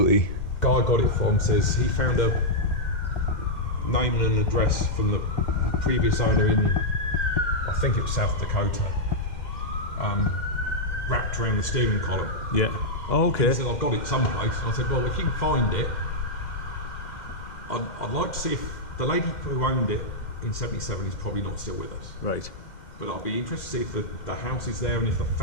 Guy I got it from says he found a name and an address from the previous owner in, I think it was South Dakota, wrapped around the steering column. Yeah. Oh, okay. He said, I've got it someplace. And I said, well, if you can find it, I'd like to see if the lady who owned it in 77 is probably not still with us. Right. But I'll be interested to see if the house is there and if the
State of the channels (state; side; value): late; right; 2.1 ms